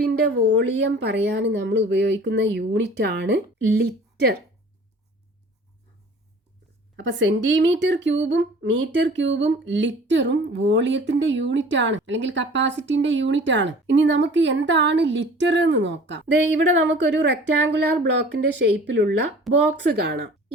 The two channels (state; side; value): normal; both; correlation 0.46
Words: വോളിയം പറയാൻ നമ്മൾ ഉപയോഗിക്കുന്ന യൂണിറ്റ് ആണ് ലിറ്റർ. അപ്പൊ സെന്റിമീറ്റർ ക്യൂബും മീറ്റർ ക്യൂബും ലിറ്ററും വോളിയത്തിന്റെ യൂണിറ്റ് ആണ് അല്ലെങ്കിൽ കപ്പാസിറ്റിന്റെ യൂണിറ്റ് ആണ്. ഇനി നമുക്ക് എന്താണ് ലിറ്റർ എന്ന് നോക്കാം. ഇവിടെ നമുക്കൊരു റെക്റ്റാങ്കുലാർ ബ്ലോക്കിന്റെ ഷേപ്പിലുള്ള ബോക്സ് കാണാം.